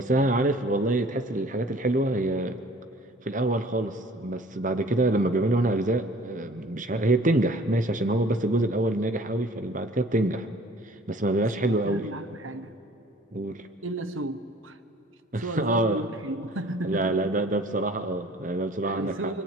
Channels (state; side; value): normal; both; correlation 0.51